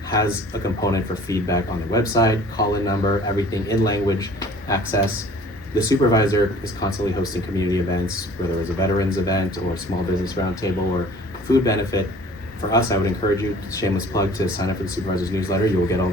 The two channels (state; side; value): normal; both; correlation 0.49